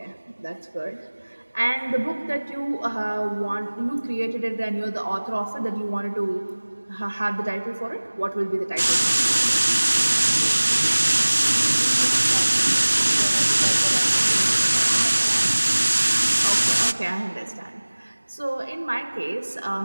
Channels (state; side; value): inverted; both; correlation -1.00